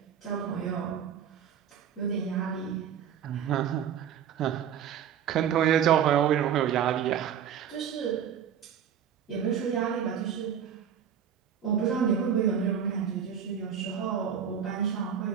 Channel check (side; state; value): left; quieter; 8.6 dB